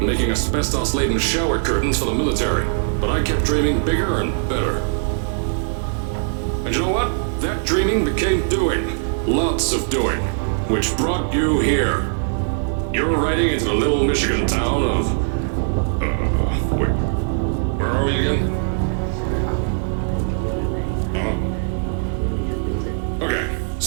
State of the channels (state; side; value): silent; left; digital silence